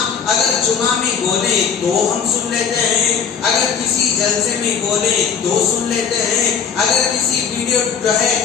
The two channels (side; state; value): right; quieter; 6.9 dB